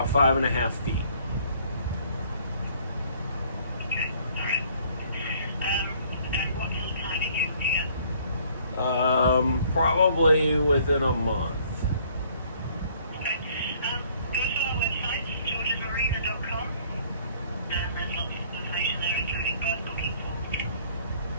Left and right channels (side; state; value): both; inverted; correlation -0.59